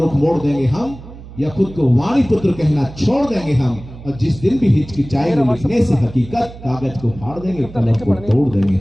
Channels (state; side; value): noise; right; hum, 16 dB below the sound